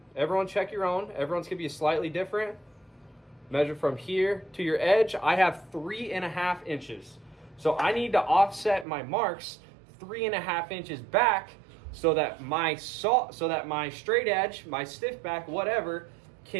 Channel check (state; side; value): drops out; left; at 8.8 s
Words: everyone check your own, everyone's gonna be slightly different. Measure from here to your edge. I have 3.5 inches. So I need to offset my marks 3.5 inches back so that my straight edge, my stiff back, whatever,